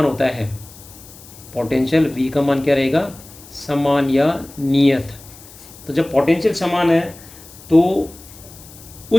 होता है, पोटेंशियल V का मान क्या रहेगा? समान या नियत। तो जब पोटेंशियल समान है तो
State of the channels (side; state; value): left; noise; hiss, 20 dB below the sound